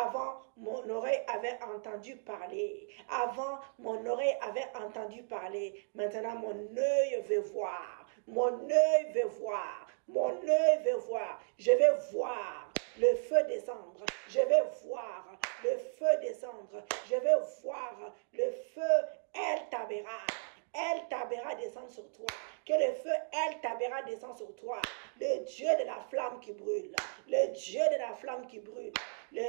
mon oreille avait entendu parler. Avant, mon oreille avait entendu parler. Maintenant, mon œil veut voir. Mon œil veut voir. Mon œil veut voir. Je vais voir le feu descendre. Je vais voir le feu descendre. Je vais voir le feu El Tabera. El Tabera descend sur toi. Que le feu El Tabera descend sur toi. Le Dieu de la flamme qui brûle. Le Dieu de la flamme qui brûle.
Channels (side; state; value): left; silent; digital silence